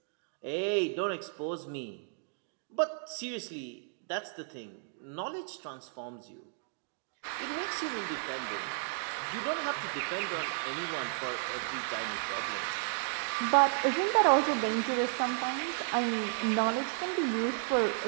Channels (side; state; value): left; silent; digital silence